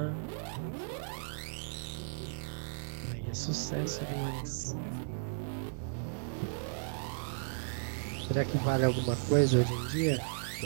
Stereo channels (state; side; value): silent; left; 54 dB below the other